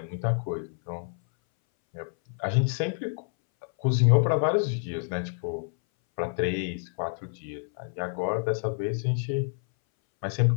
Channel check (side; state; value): right; silent; 59 dB below the other